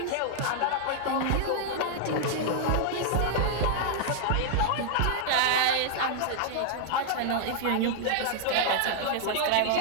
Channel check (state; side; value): different; both; correlation -0.01